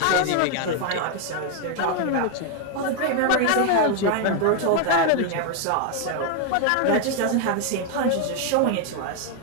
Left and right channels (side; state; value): both; different; correlation 0.00